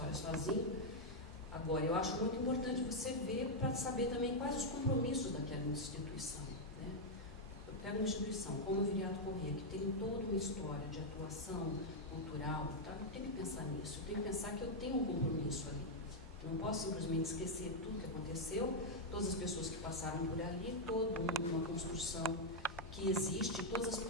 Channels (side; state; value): both; normal; correlation -0.02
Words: sozinho. Agora, eu acho muito importante você ver para saber também quais os compromissos daquela instituição, né? Eu pego uma instituição como o Viriato Corrêa, que tem toda uma história de atuação cultural, tá? Eu tenho que pensar nisso, eu tenho que pensar que eu tenho um compromisso ali. Eu não posso simplesmente esquecer tudo que aconteceu, todas as pessoas que passaram por ali, toda uma construção que existe, todas as